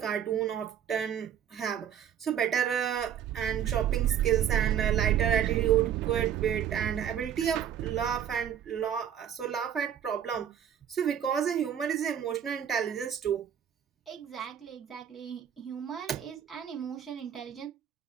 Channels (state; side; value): quieter; left; 9.2 dB